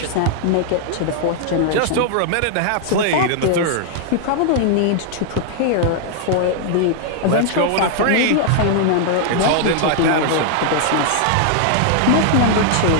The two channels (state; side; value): different; both; correlation -0.01